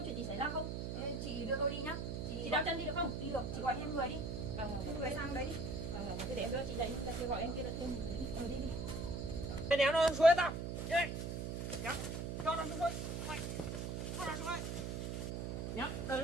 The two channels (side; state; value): right; noise; hum, 3 dB below the sound